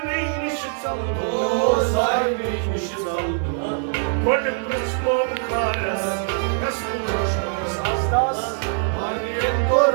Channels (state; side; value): silent; left; digital silence